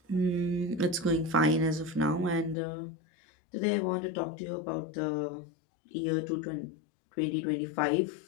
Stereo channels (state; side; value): drops out; right; at 2.6 s